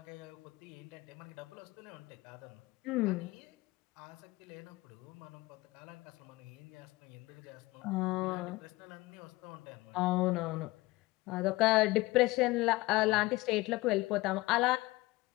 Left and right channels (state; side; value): quieter; right; 20.9 dB